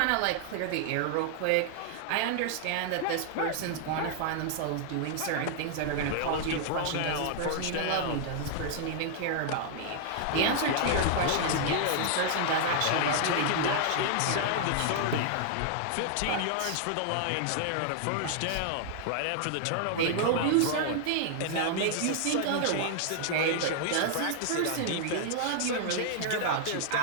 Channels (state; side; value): different; both; correlation -0.01